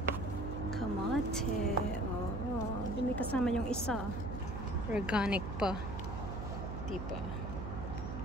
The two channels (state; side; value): noise; right; hum, 5 dB below the sound